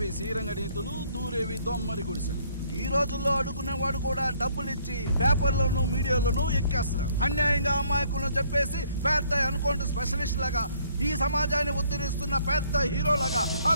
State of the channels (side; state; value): both; inverted; correlation -0.64